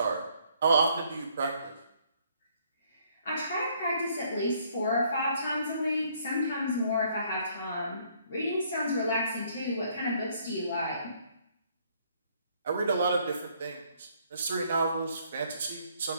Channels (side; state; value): both; inverted; correlation -0.65